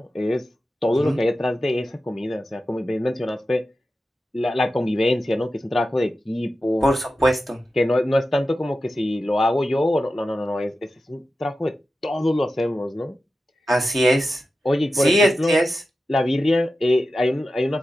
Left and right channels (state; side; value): normal; both; correlation 0.92